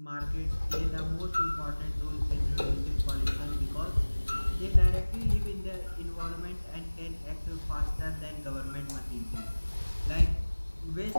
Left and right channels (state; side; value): inverted; both; correlation -1.00